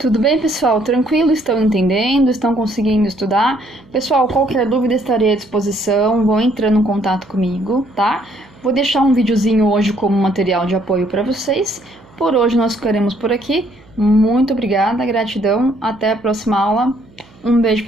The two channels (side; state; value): right; noise; hum, 28 dB below the sound